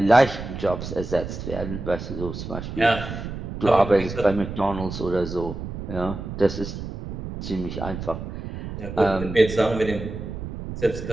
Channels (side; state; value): right; noise; rumble, 8 dB below the sound